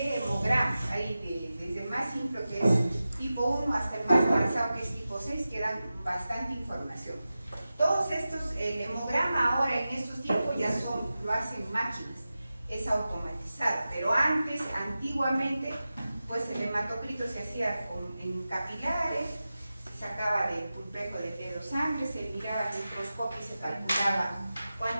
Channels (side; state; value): both; inverted; correlation -0.94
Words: hemogramas, hay desde el más simple que es tipo 1 hasta el más avanzado que es tipo 6 que dan bastante información. Todos estos, el hemograma ahora en estos tiempos ya lo hacen máquinas, es automatizado, pero antes, antiguamente, pues el hematocrito se hacía en capilares, se sacaba del pulpejo de dedo sangre, se miraba al microscopio y se calculaba